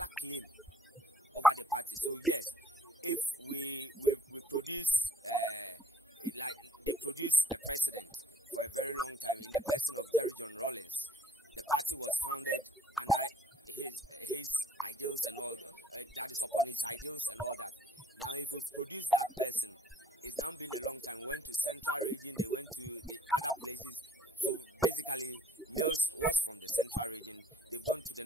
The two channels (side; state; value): both; normal; correlation 0.60